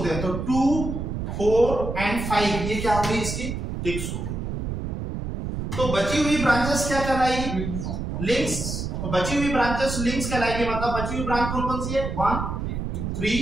हैं। तो 2, 4 एंड 5 ये क्या होगी? इसकी ट्विक्स होगी। तो बची हुई ब्रांचेस क्या कहलाएगी? लिंक्स। तो बची हुई ब्रांचेस लिंक्स कहलाएगी। मतलब बची हुई ब्रांच कौन कौन सी है? 1,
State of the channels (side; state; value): right; noise; rumble, 4 dB below the sound